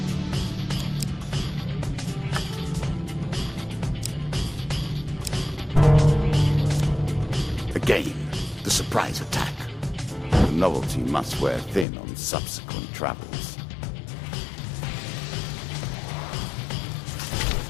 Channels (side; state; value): right; drops out; at 11.9 s